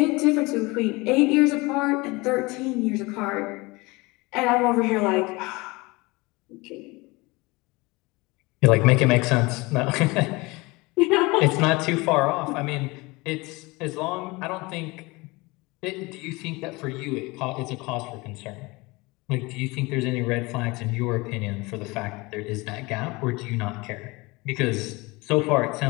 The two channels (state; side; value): quieter; right; 23.8 dB